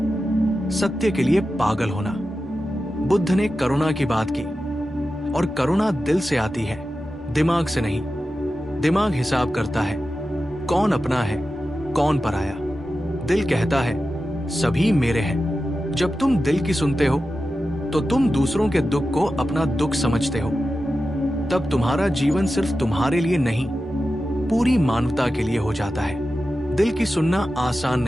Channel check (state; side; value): normal; both; correlation 0.92